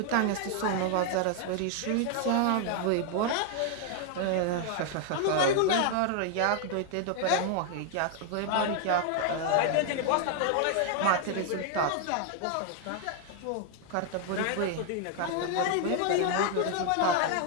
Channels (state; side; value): different; both; correlation 0.00